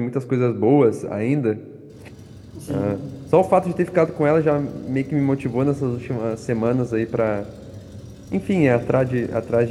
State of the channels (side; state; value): both; identical; correlation 1.00